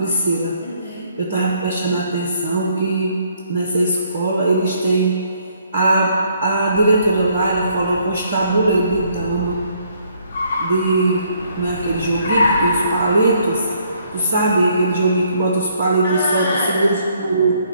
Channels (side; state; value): both; inverted; correlation -0.67